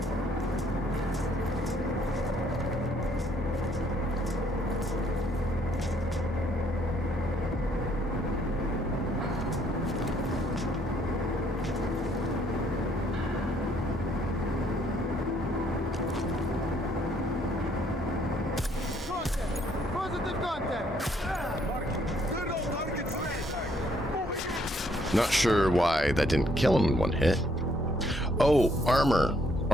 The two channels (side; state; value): both; normal; correlation 0.67